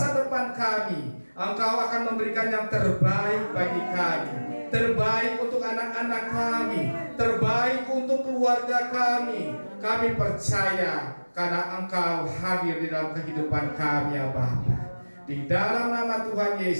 depan kami Engkau akan memberikan yang terbaik bagi kami, terbaik untuk anak-anak kami, terbaik untuk keluarga kami. Kami percaya karena Engkau hadir di dalam kehidupan kami ya Bapa. Di dalam nama Tuhan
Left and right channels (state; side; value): inverted; both; correlation -1.00